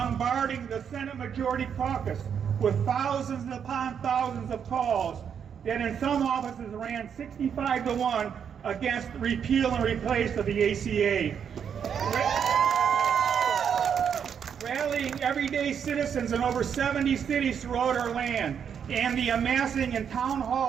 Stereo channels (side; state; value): left; quieter; 7.7 dB